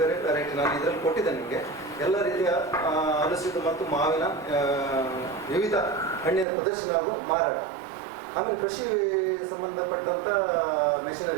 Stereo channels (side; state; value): left; drops out; at 6.5 s